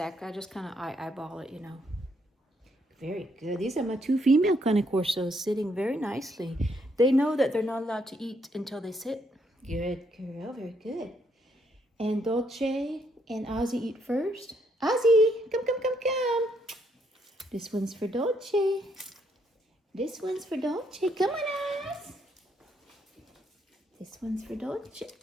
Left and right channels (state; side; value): normal; both; correlation 0.73